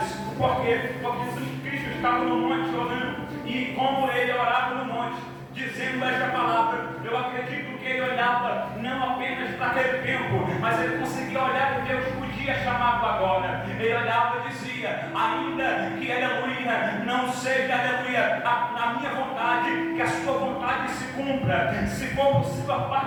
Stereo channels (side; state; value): both; identical; correlation 1.00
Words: Por quê? Porque Jesus Cristo estava no monte orando, e como ele orava no monte, dizendo esta palavra, eu acredito que ele olhava não apenas para aquele tempo, mas ele conseguia olhar o Deus o dia chamado agora. Ele olhava e dizia: ainda que, aleluia, não seja, aleluia, a minha vontade, que a sua vontade se cumpra. Se for possível,